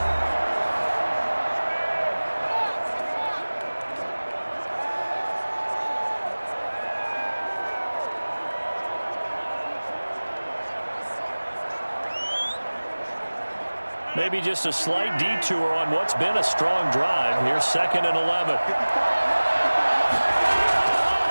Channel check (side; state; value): both; inverted; correlation -1.00